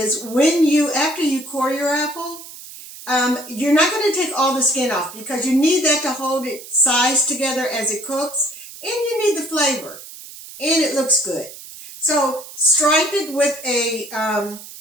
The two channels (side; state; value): right; noise; hiss, 15 dB below the sound